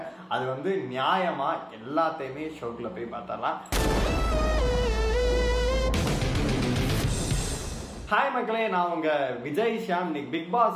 அது வந்து நியாயமா, எல்லாத்தையுமே ஷோக்குள்ள போய் பார்த்தரலாம். ஹாய் மக்களே, நான் உங்க விஜய் ஷியாம். இன்னைக்கு பிக் பாஸ்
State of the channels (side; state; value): both; identical; correlation 1.00